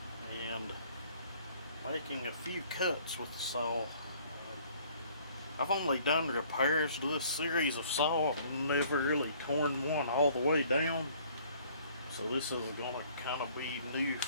and making a few cuts with the saw. I've only done repairs to this series of saw. I've never really torn one all the way down. So this is going to kind of be new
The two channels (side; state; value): both; inverted; correlation -0.57